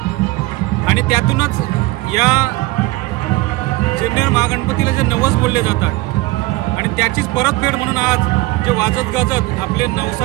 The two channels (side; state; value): left; quieter; 20.5 dB